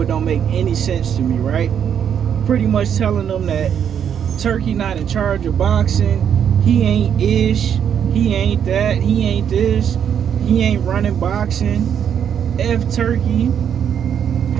It don't make any sense to me, right? Pretty much telling them that Turki not in charge of boxing. He ain't ish. He ain't that. He ain't this. He ain't running boxing. F Turki.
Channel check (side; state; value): left; quieter; 8.5 dB